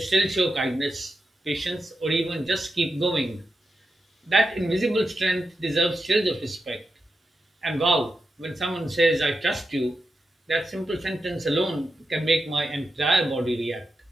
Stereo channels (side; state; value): both; normal; correlation 0.88